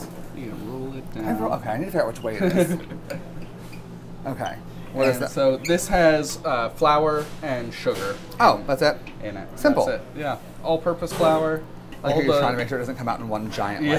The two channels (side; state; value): both; identical; correlation 1.00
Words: You can roll it down. Okay, I need to figure out which way it is. Okay. What is And that? so this has flour and sugar Oh, that's it? in it. Simple. That's it. Yeah, all-purpose flour. I like how you're trying to make sure it doesn't come out in one giant,